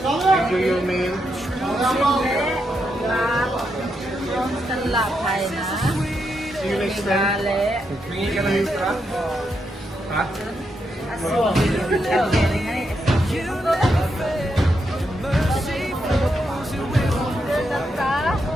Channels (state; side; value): normal; both; correlation 0.82